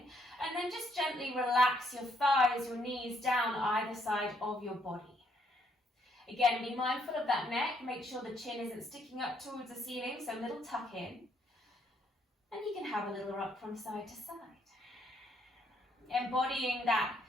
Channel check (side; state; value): both; normal; correlation 0.71